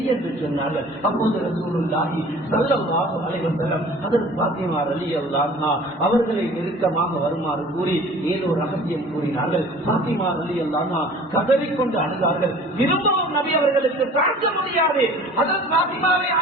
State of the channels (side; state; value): both; normal; correlation 0.47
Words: என்று சொன்னார்கள். அப்போது ரசூலுல்லாஹி ஸல்லல்லாஹு அலைஹி வஸல்லம் ஹஜ்ரத் ஃபாத்திமா ரலியல்லாஹு அன்ஹா அவர்களை நெருக்கமாக வருமாறு கூறி ஏதோ ரகசியம் கூறினார்கள். ஃபாத்திமா ரலியல்லாஹு அன்ஹா கதறிக்கொண்டு அழுதார்கள். திரும்பவும் நபி அவர்களுக்கு தாங்க முடியாது. ஹஜ்ரத் ஃபாத்திமாவை